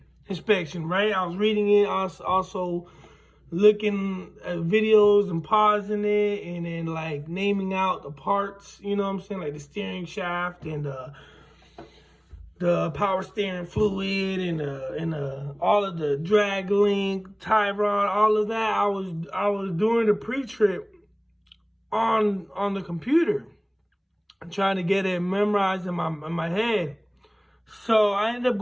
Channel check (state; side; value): identical; both; correlation 1.00